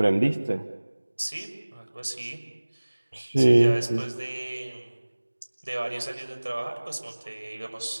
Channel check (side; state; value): both; inverted; correlation -1.00